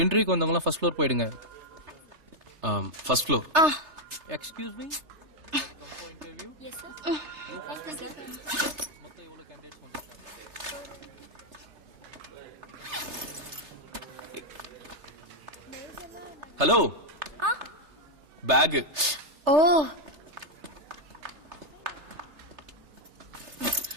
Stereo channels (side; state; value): left; late; 3.3 ms